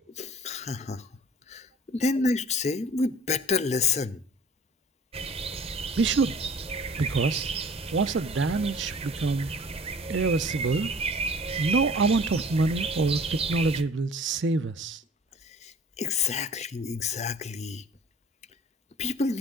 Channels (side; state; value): both; normal; correlation 0.48